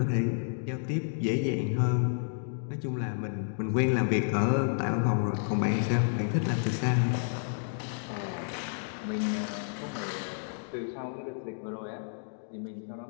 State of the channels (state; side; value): silent; right; digital silence